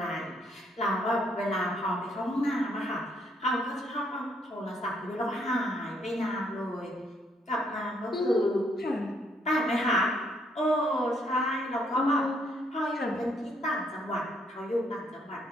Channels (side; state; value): both; normal; correlation 0.70